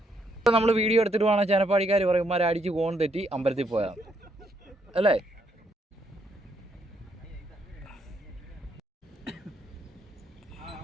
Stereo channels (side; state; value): both; normal; correlation 0.74